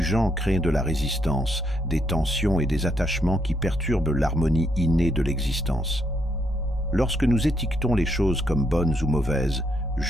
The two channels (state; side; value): normal; both; correlation 0.75